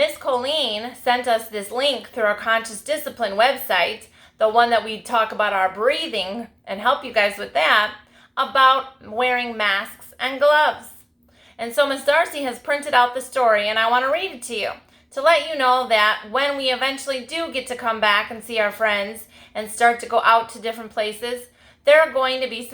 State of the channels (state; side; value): identical; both; correlation 1.00